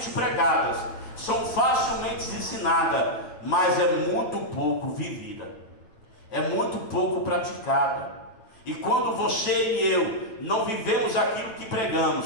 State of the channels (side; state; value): right; late; 9.0 ms